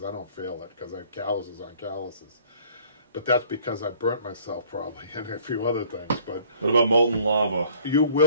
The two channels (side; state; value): both; inverted; correlation -0.55